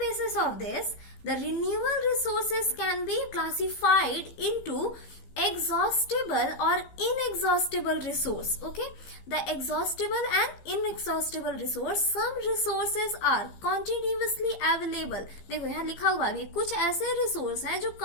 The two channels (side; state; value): right; late; 15 ms